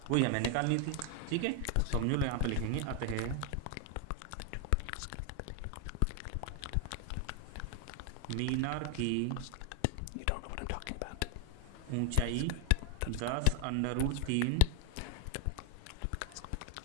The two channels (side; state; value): both; different; correlation 0.00